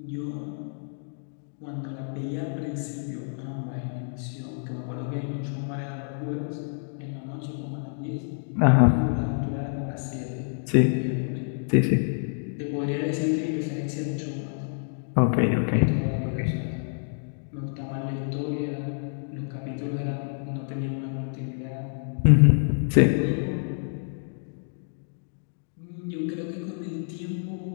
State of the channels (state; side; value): silent; right; digital silence